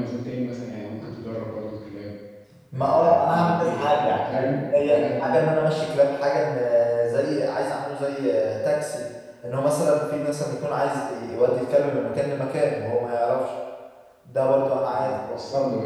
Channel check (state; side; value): identical; both; correlation 1.00